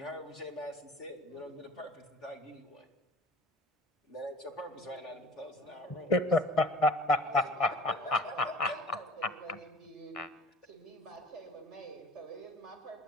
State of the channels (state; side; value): normal; both; correlation 0.46